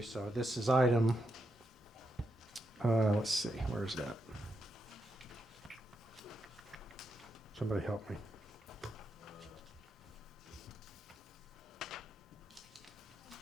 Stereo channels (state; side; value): normal; both; correlation 0.83